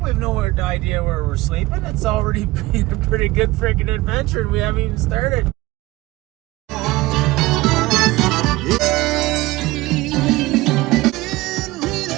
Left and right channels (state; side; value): quieter; left; 19.6 dB